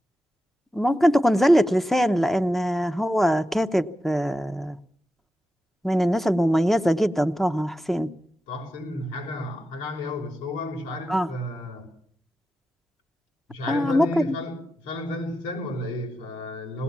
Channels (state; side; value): normal; both; correlation 0.90